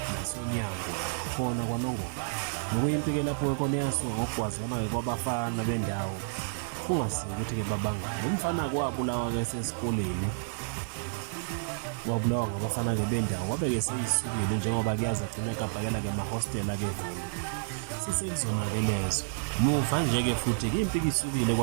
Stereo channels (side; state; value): left; silent; digital silence